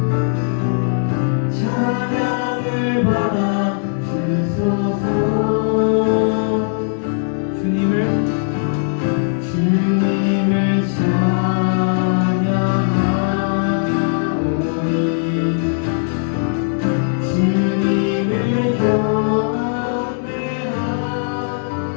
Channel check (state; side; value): silent; right; digital silence